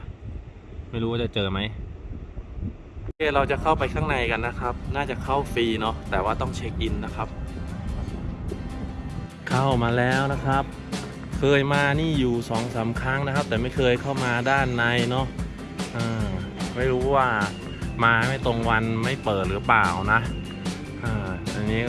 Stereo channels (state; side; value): identical; both; correlation 1.00